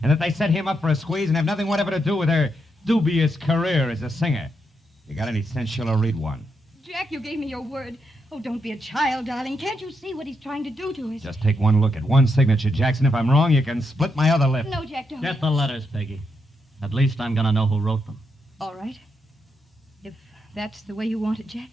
And that they set him up for a squeeze and have nothing whatever to do with her dubious career as a singer. You got any sense, Schiller? Read one. Jack, you gave me your word. Oh, don't be a child, darling. Can't you see what he's trying to do to us? Just take one look at one signature, Jackson. If I'm wrong, you can split my other lip. No, Jack, don't. Get the letters, Peggy. At least I'm going to know who wrote them. All right. If that's the way you want it, Jack,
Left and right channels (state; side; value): normal; both; correlation 0.81